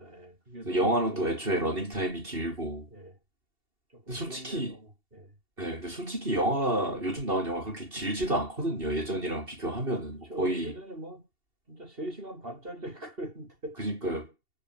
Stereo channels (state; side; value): late; left; 2.7 ms